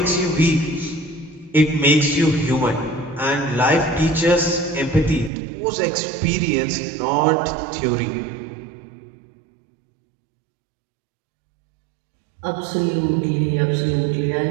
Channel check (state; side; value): drops out; left; at 5.3 s